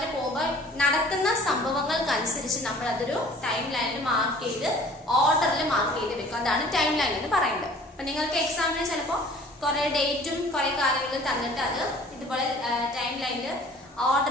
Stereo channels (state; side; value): normal; both; correlation 0.50